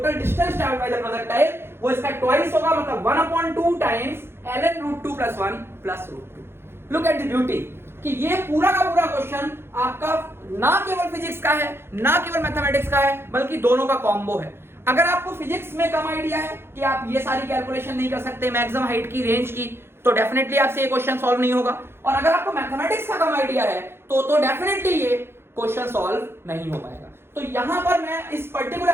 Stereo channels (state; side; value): late; left; 0.11 ms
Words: distance travelled by the projectile, वो इसका ट्वाइस होगा, मतलब 1/2 times ln √2 plus 1 plus √2। Look at the beauty कि ये पूरा का पूरा क्वेश्चन आपका ना केवल फिजिक्स का है, ना केवल मैथमेटिक्स का है, बल्कि दोनों का कॉम्बो है। अगर आपको फिजिक्स में कम आइडिया है कि आप ये सारी कैलकुलेशन नहीं कर सकते, मैक्सिमम हाइट की, रेंज की, तो डेफिनेटली आपसे ये क्वेश्चन सॉल्व नहीं होगा, और अगर आपको मैथमेटिक्स का कम आइडिया है तो डेफिनेटली ये क्वेश्चन सॉल्व नहीं हो पाएगा। तो यहां पर मैं इस